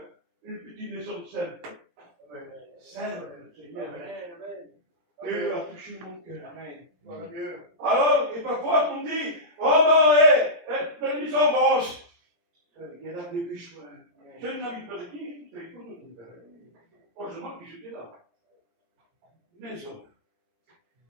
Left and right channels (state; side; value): late; left; 17 ms